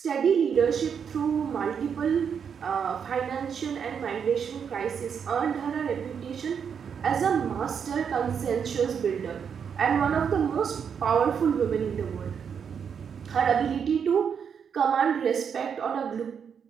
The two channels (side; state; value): left; quieter; 7.2 dB